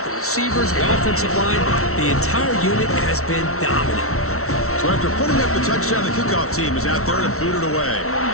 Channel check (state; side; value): late; right; 0.63 ms